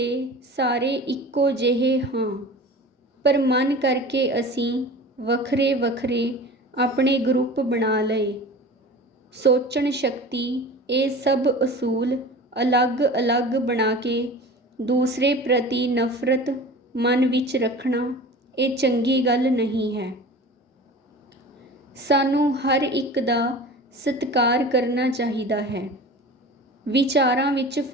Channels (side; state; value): both; normal; correlation 0.37